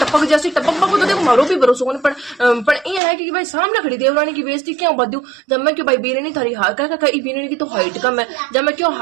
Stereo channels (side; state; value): left; drops out; at 3.0 s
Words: जैसी टपक तो देखो मारो भी भरोसा होने पर ये है कि भाई सामने खड़ी देवरानी की बेइज्जती क्यों बदू जब मैं क्यों भाई बीरनी थारी बीरनी की तो हाइट कम है जब मैं क्यों